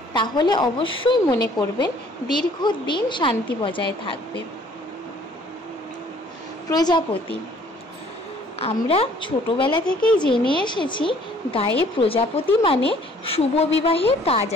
তাহলে অবশ্যই মনে করবেন দীর্ঘদিন শান্তি বজায় থাকবে। প্রজাপতি। আমরা ছোটবেলা থেকেই জেনে এসেছি গায়ে প্রজাপতি মানে শুভ বিবাহের কাজ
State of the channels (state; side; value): normal; both; correlation 0.58